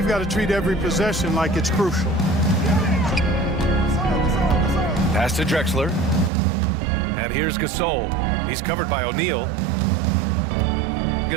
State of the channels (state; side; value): drops out; left; at 6.3 s